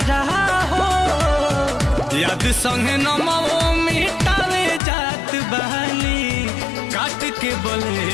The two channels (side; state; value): right; drops out; at 4.8 s